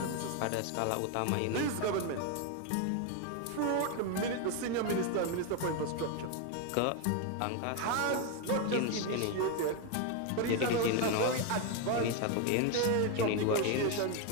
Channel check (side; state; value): both; different; correlation 0.02